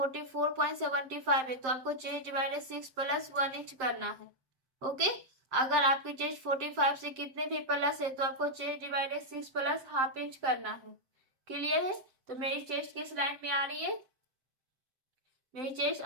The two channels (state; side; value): late; left; 7.6 ms